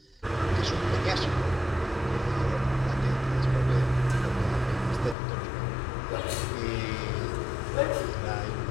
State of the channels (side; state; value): right; drops out; at 5.2 s